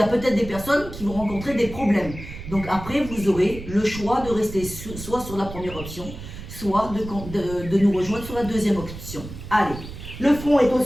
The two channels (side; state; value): right; noise; rumble, 12 dB below the sound